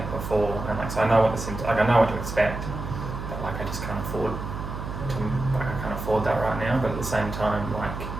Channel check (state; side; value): noise; right; hum, 7 dB below the sound